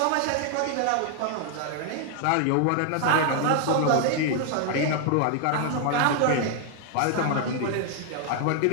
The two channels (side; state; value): both; different; correlation 0.00